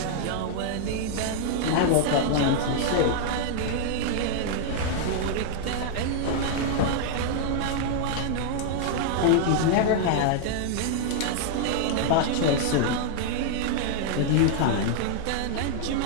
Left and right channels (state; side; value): different; both; correlation 0.00